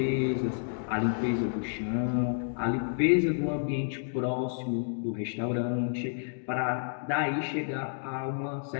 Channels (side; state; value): right; silent; digital silence